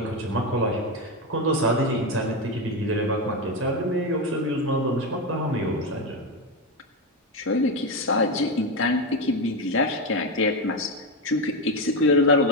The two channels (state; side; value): normal; both; correlation 0.11